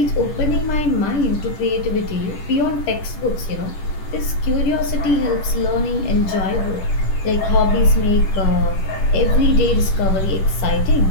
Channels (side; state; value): right; late; 10 ms